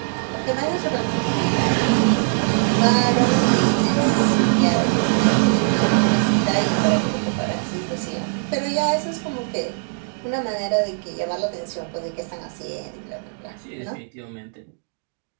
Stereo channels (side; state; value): left; silent; digital silence